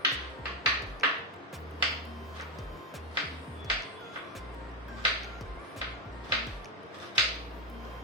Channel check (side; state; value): both; normal; correlation 0.05